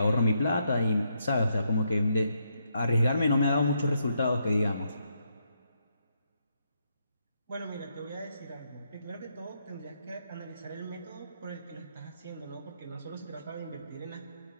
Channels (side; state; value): both; inverted; correlation -0.78